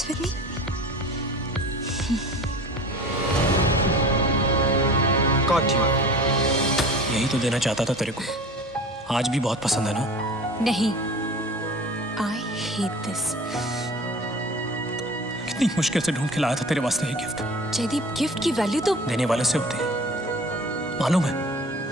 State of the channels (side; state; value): both; normal; correlation 0.39